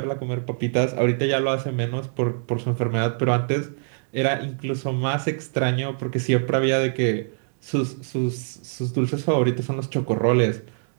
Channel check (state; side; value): silent; left; digital silence